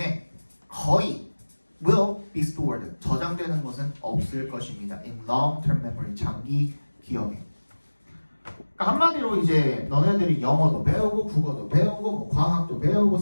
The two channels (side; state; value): both; inverted; correlation -1.00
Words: 거의 will be stored, 저장되는 것은 없을 것입니다. in long-term memory, 장기 기억에. 그러니까 한마디로 이제 너네들이 영어도 배우고 국어도 배우고 뭐 과학도 배우고